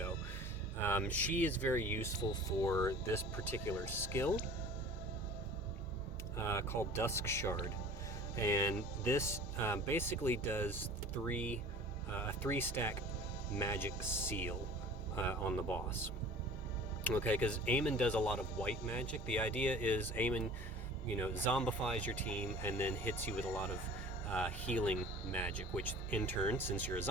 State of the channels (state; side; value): normal; both; correlation 0.44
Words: She is very useful for this particular skill called Dusk Shard, and this basically does a 3-stack magic seal on the boss. Okay, because Amon does a lot of white magic. The idea is Amon zombifies your team and then hits you with a lot of healing magic, which in turn, since you're a